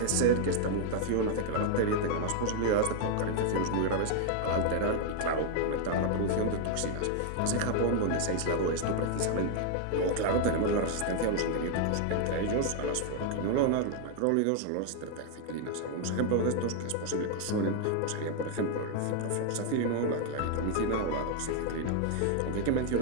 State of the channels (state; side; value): different; both; correlation 0.00